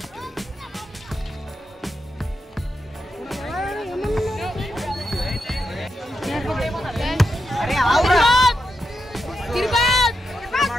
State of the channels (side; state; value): both; normal; correlation 0.86